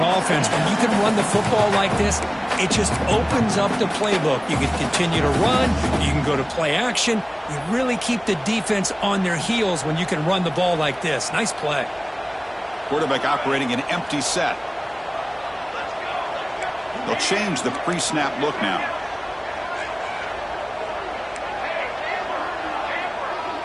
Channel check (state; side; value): identical; both; correlation 1.00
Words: When you can run the football like this, it just opens up the playbook. You can continue to run. You can go to play action. You really keep the defense on their heels when you can run the ball like this. Nice play. Quarterback operating an empty set. They'll change the pre-snap look now.